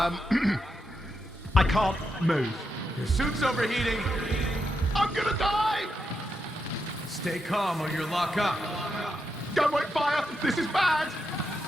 can't move. Your suit's overheating. I'm gonna die! Stay calm or you'll lock up. Don't wait fire! This is bad!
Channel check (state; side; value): normal; both; correlation 0.84